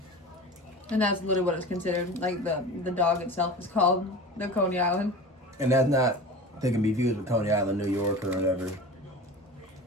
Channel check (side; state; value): both; normal; correlation 0.34